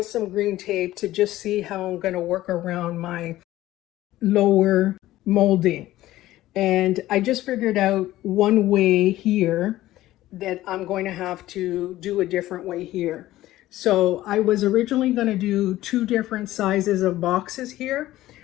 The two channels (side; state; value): right; quieter; 15.4 dB